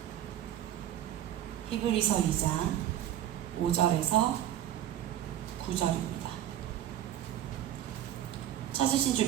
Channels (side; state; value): left; quieter; 11.9 dB